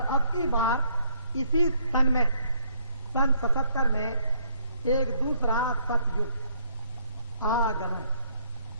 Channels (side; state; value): both; inverted; correlation -0.67